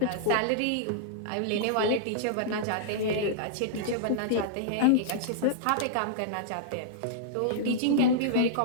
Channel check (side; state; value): both; different; correlation -0.02